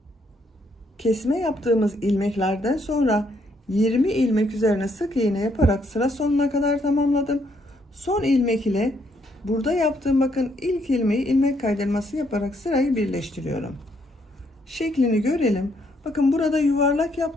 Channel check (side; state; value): both; normal; correlation 0.72